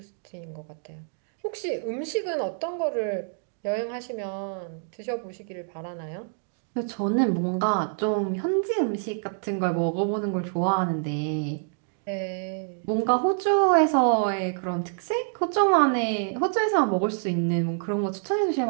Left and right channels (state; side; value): silent; left; digital silence